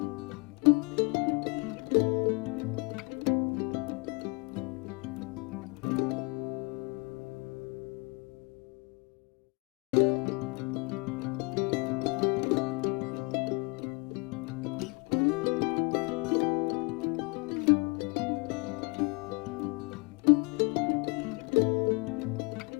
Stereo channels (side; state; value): right; quieter; 31.0 dB